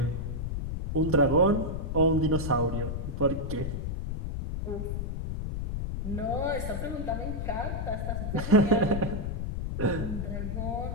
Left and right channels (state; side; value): noise; left; rumble, 3 dB below the sound